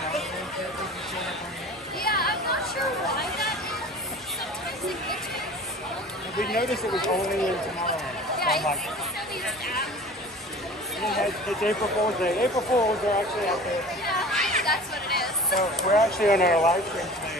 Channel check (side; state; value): both; normal; correlation 0.41